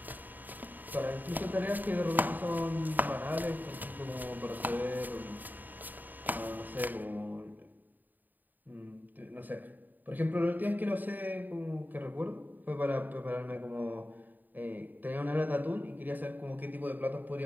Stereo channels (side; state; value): left; late; 0.087 ms